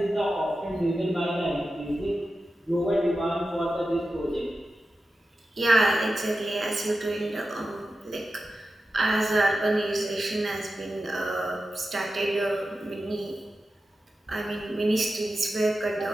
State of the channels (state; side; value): normal; both; correlation 0.92